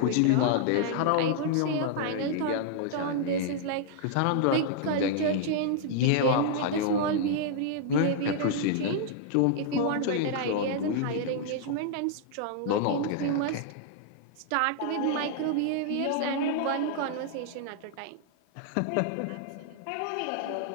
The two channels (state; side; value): different; both; correlation -0.01